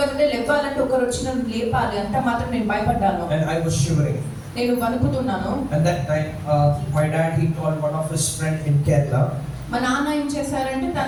నుండి లేవాలంటే ఒకరు వచ్చి నన్ను లేపాలి అంత మాత్రం నేను భయపడ్డాను. And I was shivering. నేను వణుకుతున్నాను. And that night, my dad, he called one of his friend in Kerala. మా నాన్న ఏం చేశారంటే,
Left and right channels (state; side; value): identical; both; correlation 1.00